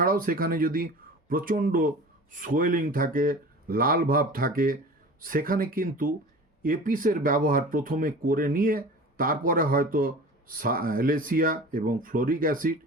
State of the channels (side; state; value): both; normal; correlation 0.38